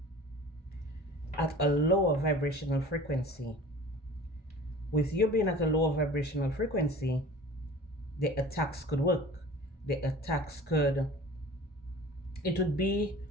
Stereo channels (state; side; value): normal; both; correlation 0.43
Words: at a lower vibrational frequency. With you being at a lower vibrational frequency, the attacks could work. The attacks could, it would be